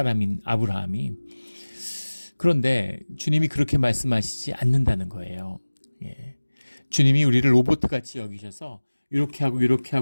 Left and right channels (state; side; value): inverted; both; correlation -1.00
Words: 아브라함이. 그런데 주님이 그렇게 말씀하시지 않는다는 거예요. 예. 주님이 우리를 로봇같이 여기셔서 이렇게 하고 이렇게